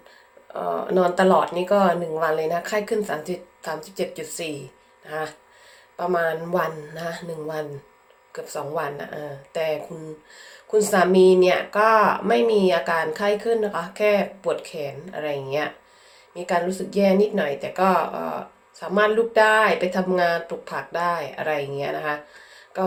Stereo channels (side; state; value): both; identical; correlation 1.00